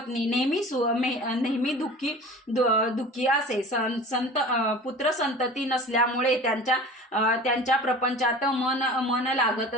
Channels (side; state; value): both; normal; correlation 0.40